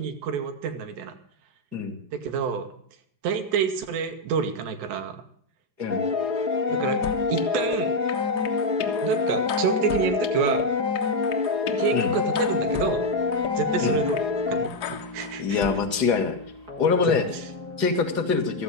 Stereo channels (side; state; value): left; late; 4.8 ms